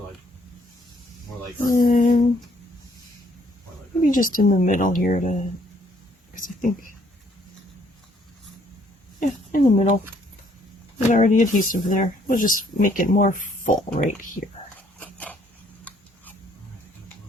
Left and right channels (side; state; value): both; normal; correlation 0.66